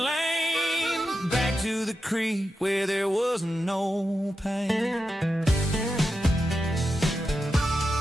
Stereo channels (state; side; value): normal; both; correlation 0.89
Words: back to the creek where there was no pain.